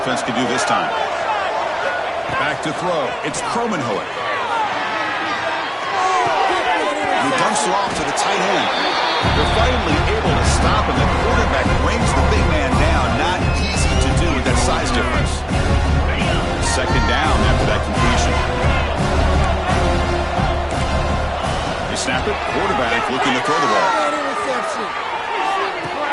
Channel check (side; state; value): both; identical; correlation 1.00